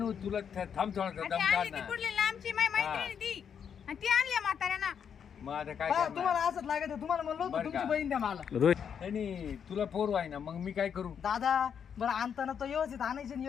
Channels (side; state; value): right; quieter; 7.6 dB